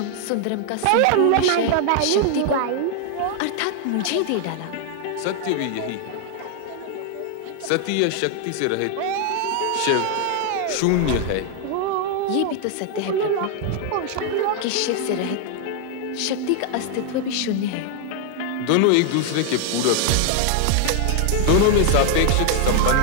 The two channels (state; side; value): different; both; correlation 0.00